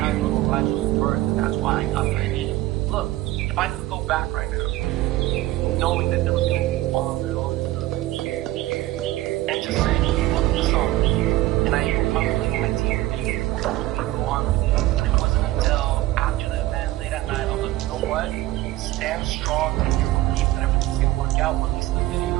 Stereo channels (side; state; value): left; quieter; 16.6 dB